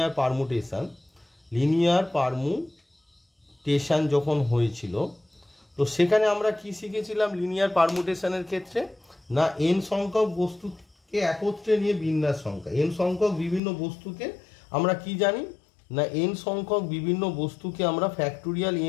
পারমুটেশন যখন হয়েছিল, তো সেখানে আমরা কি শিখেছিলাম লিনিয়ার পারমুটেশনের ক্ষেত্রে, না n সংখ্যক বস্তুকে একত্রে নিয়ে বিন্যাস সংখ্যা, n সংখ্যক বিভিন্ন বস্তুকে আমরা কি জানি, না n সংখ্যক বিভিন্ন বস্তুকে আমরা ফ্যাক্টোরিয়াল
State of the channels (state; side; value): drops out; right; at 13.6 s